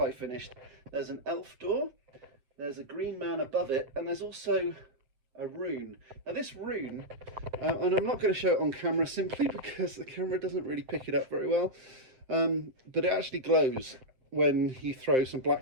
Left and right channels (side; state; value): left; late; 7.7 ms